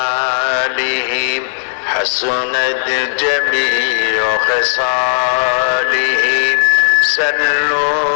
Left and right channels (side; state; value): right; silent; 68 dB below the other